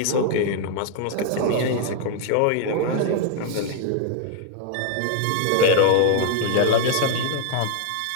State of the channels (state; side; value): different; both; correlation 0.00